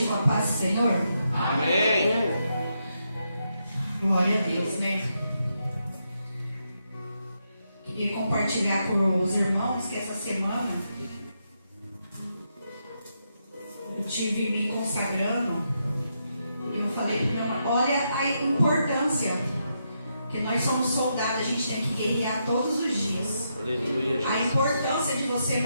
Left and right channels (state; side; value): inverted; both; correlation -0.82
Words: com a paz do Senhor. Amém. Glória a Deus, né? Queria compartilhar com os irmãos que essa semana eu tive me consagrando. E eu falei para minha mãe, olha a importância, que nós somos soldados, a gente tem que guerrear todos os dias. Aleluia. A importância de você